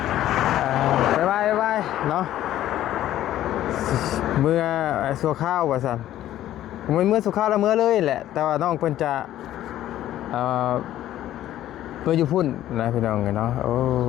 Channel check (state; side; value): quieter; right; 13.0 dB